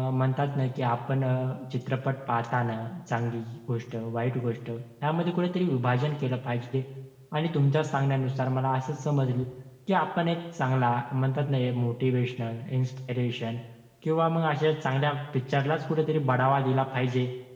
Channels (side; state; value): both; identical; correlation 1.00